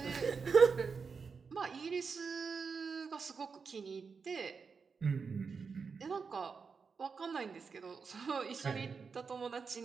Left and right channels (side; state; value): left; quieter; 5.3 dB